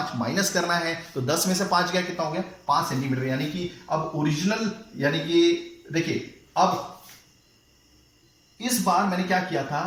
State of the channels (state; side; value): identical; both; correlation 1.00